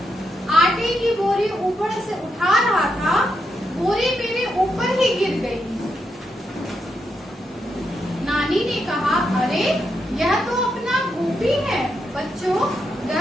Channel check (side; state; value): both; normal; correlation 0.82